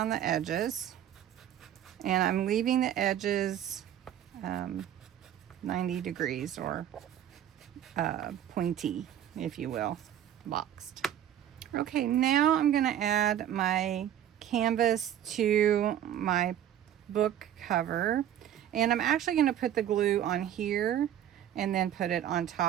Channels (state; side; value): quieter; left; 10.8 dB